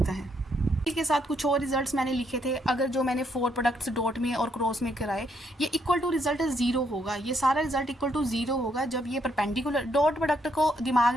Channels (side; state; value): both; normal; correlation 0.73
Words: है। इसके साथ कुछ और रिजल्ट्स मैंने लिखे थे। अगर जो मैंने 4 प्रोडक्ट्स डॉट में और क्रॉस में कराए, ये इक्वल टू रिजल्ट 0 होगा। ये सारा रिजल्ट इक्वल टू 0 होगा जब ये परपेंडिकुलर। डॉट प्रोडक्ट को दिमाग